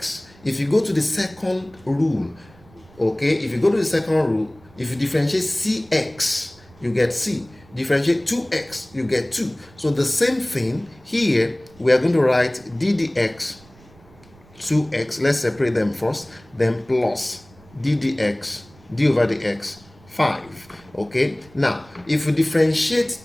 if you go to the second rule, okay, if you go to the second rule, if you differentiate cx, you get c. Differentiate 2x, you get 2. So the same thing here, we are going to write d dx 2x. Let's separate them first, then plus d dx d over dx 5. Okay, now if we differentiate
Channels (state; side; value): noise; right; rumble, 26 dB below the sound